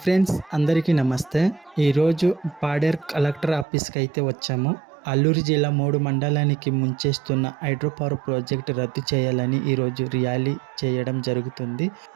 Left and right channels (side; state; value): left; drops out; at 3.7 s